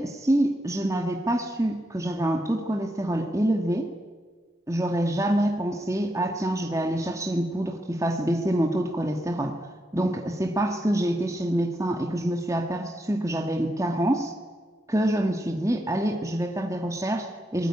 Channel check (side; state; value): both; normal; correlation 0.82